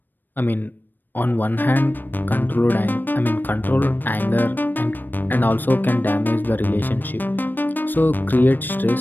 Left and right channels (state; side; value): late; right; 0.092 ms